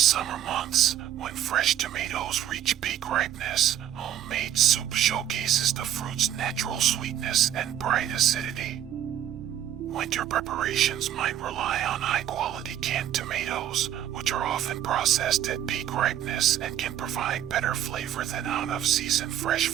months, when fresh tomatoes reach peak ripeness, homemade soup showcases the fruit's natural sweetness and bright acidity. Winter preparations might rely on high-quality canned tomatoes, which are often processed at peak ripeness and can provide better flavor than out-of-season fresh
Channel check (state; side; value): quieter; left; 11.1 dB